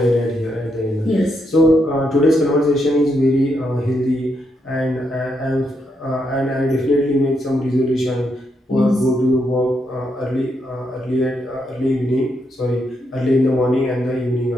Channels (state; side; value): normal; both; correlation 0.80